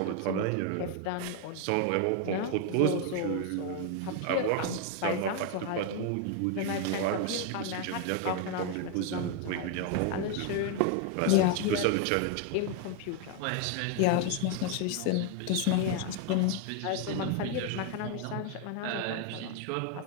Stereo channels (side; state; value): both; different; correlation 0.01